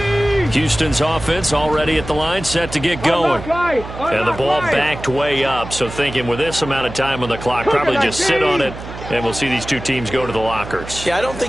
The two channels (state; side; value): noise; right; hum, 11 dB below the sound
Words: Houston's offense already at the line, set to get going. And the ball backed way up, so thinking with this amount of time on the clock, probably just sit on it, and we'll see these two teams go to the lockers. Yeah, I don't